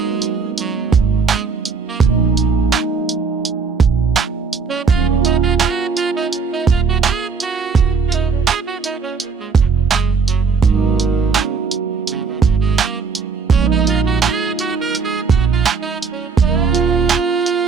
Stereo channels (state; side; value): quieter; left; 5.1 dB